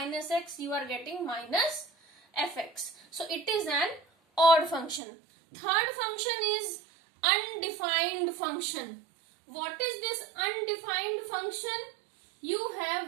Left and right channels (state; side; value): drops out; left; at 5.0 s